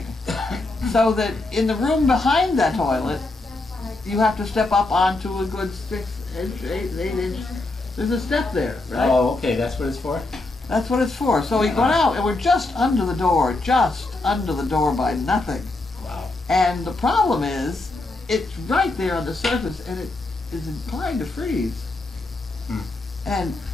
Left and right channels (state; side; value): quieter; right; 3.1 dB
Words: So that in the room behind that toilet, you have to step up onto a good 6 inch, 8 inch. There's a step there, right? Oh, okay, that's what it's for? That's what it's for. So we got out, and we're just under the door by nothing. Wow. And the problem is, it's right there on the surface, and it is inclined to freeze. And